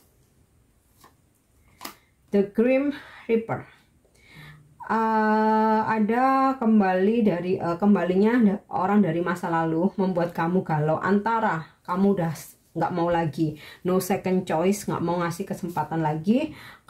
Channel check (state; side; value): identical; both; correlation 1.00